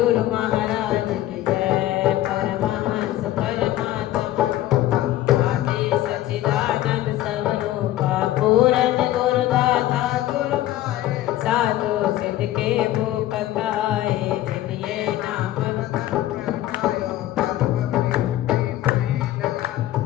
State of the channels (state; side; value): quieter; right; 14.4 dB